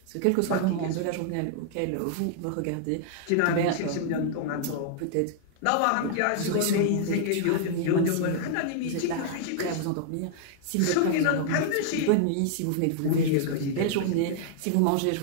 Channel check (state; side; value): different; both; correlation -0.01